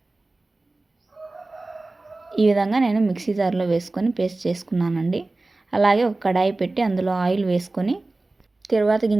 ఈ విధంగా నేను మిక్సీ జార్లో వేసుకొని పేస్ట్ చేసుకున్నానండి. అలాగే ఒక కడాయి పెట్టి అందులో ఆయిల్ వేసుకొని తిరువాత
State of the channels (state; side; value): quieter; left; 3.1 dB